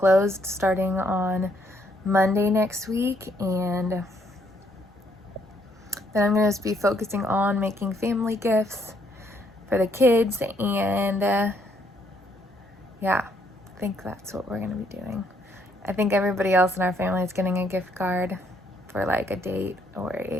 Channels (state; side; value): normal; both; correlation 0.70